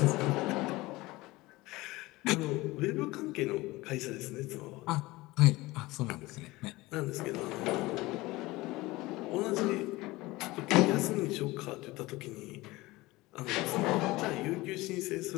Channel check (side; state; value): right; quieter; 20.3 dB